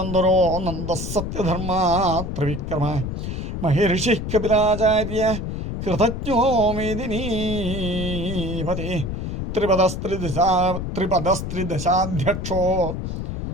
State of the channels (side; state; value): left; noise; rumble, 5 dB below the sound